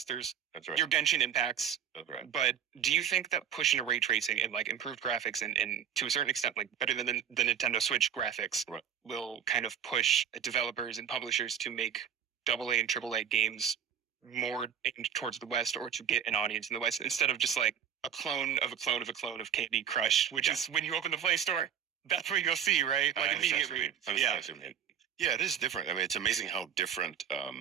There's your Genshin impacts. But do you think that pushing a ray tracing and like improved graphics and to a certain extent like better than the Nintendo Switch graphics will kind of push developers and publishers to make AA and AAA games more aimed towards the West, or to get an audience in the West, instead of just like a clone of a clone of a clone of Candy Crush, which is when you open the Play Store, that's what you'll see, right? Like immediately. Yeah, it is different. I mean, it's amazing how different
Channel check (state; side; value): quieter; left; 8.7 dB